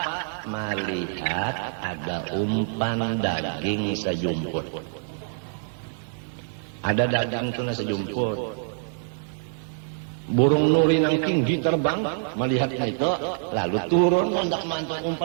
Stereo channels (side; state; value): left; silent; digital silence